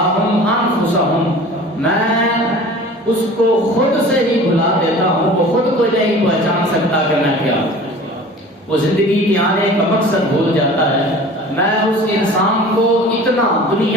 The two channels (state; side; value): normal; both; correlation 0.42